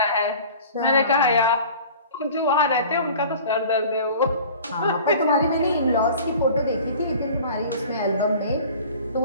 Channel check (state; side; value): inverted; both; correlation -0.43